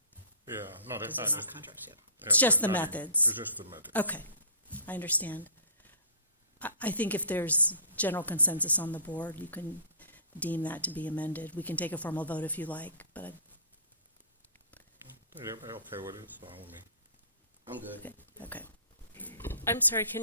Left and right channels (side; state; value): both; inverted; correlation -0.42